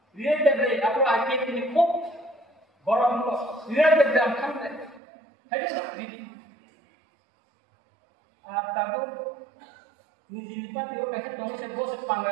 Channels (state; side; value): drops out; left; at 5.0 s